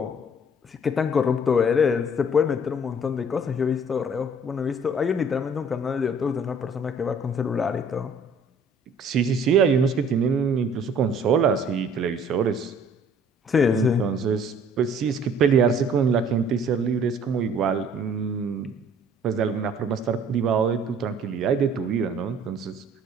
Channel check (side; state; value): both; normal; correlation 0.55